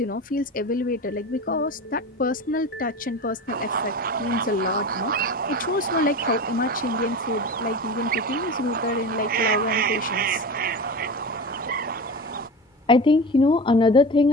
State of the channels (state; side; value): normal; both; correlation 0.29